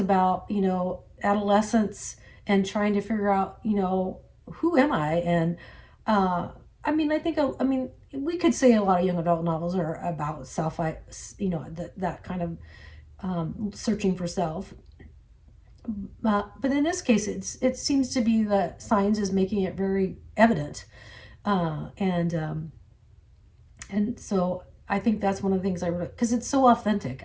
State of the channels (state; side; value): identical; both; correlation 1.00